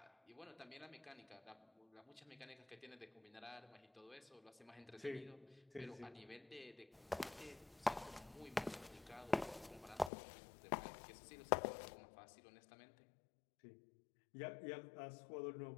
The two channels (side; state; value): right; drops out; at 10.1 s